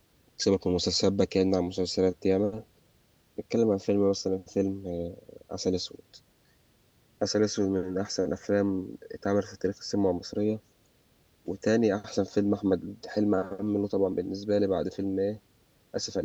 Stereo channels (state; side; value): identical; both; correlation 1.00